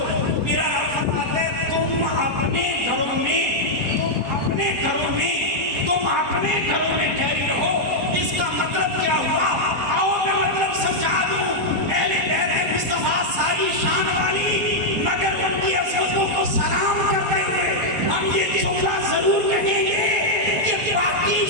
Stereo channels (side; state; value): left; late; 4.2 ms